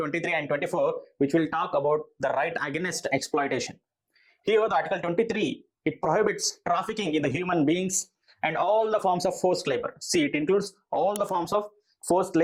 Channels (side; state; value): both; identical; correlation 1.00